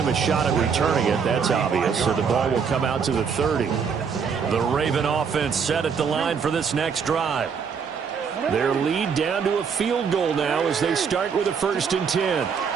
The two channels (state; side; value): quieter; left; 6.3 dB